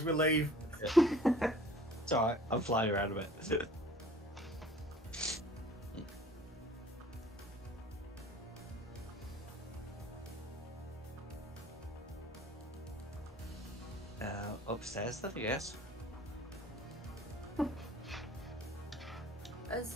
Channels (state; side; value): normal; both; correlation 0.49